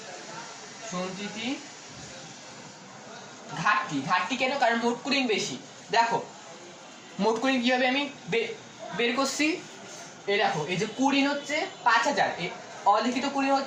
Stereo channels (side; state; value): both; identical; correlation 1.00